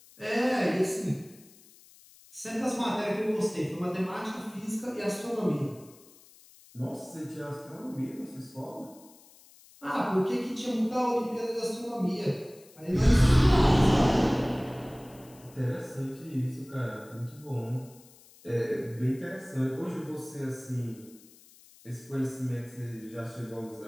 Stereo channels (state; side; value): noise; left; hiss, 25 dB below the sound